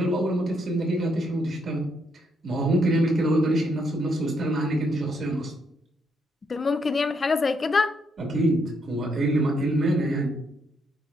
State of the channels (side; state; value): both; normal; correlation 0.75